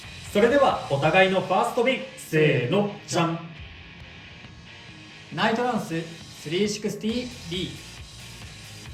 それではお互いのファーストビン、せーの、じゃん。ナイトランス 360B、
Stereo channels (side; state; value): both; identical; correlation 1.00